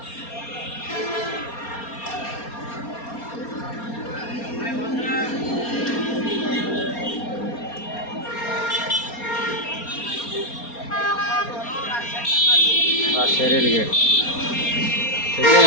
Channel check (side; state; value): right; late; 4.3 ms